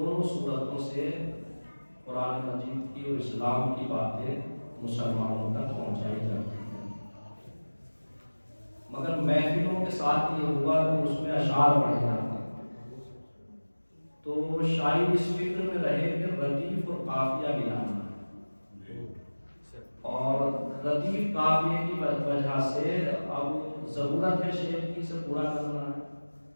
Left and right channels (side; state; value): both; inverted; correlation -1.00